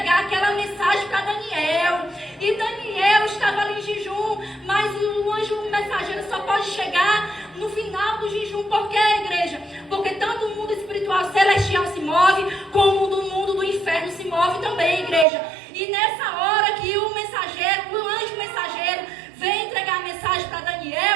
aquela mensagem para Daniel. E Daniel estava ali em jejum, mas o anjo mensageiro só pode chegar no final do jejum. Por quê, igreja? Porque tanto o mundo espiritual celestial se move, como o mundo do inferno se move também, igreja. E nessa hora que o anjo mensageiro vem entregar a mensagem para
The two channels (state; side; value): drops out; left; at 15.2 s